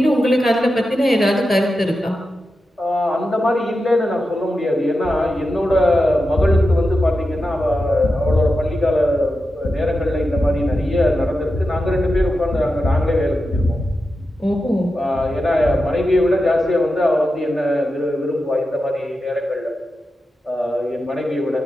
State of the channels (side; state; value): both; normal; correlation 0.90